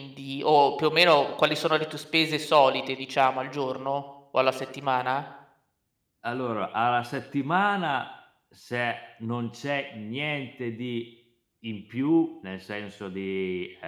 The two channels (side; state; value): both; identical; correlation 1.00